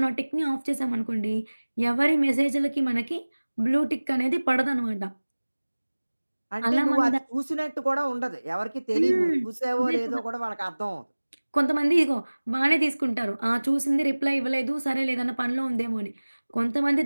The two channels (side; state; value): both; inverted; correlation -1.00